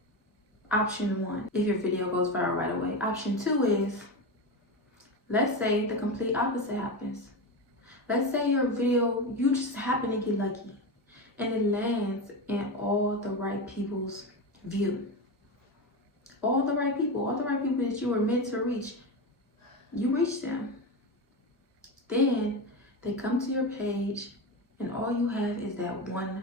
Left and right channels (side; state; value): both; normal; correlation 0.19